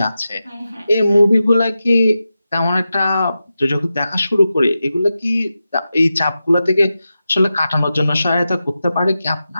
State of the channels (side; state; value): both; inverted; correlation -0.91